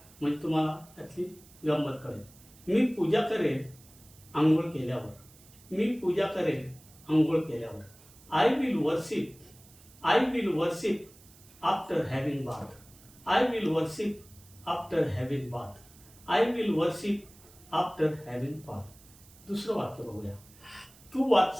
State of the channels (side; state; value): right; noise; hiss, 24 dB below the sound